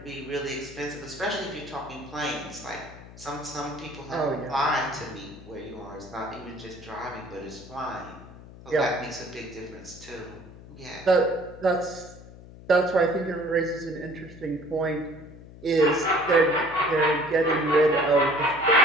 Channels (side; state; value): left; noise; hum, 17 dB below the sound